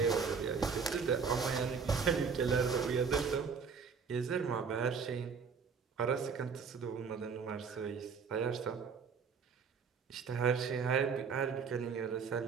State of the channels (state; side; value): quieter; left; 5.8 dB